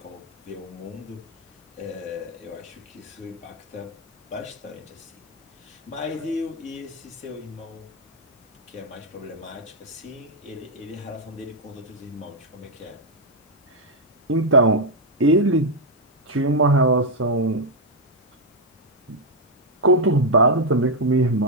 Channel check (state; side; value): normal; both; correlation 0.00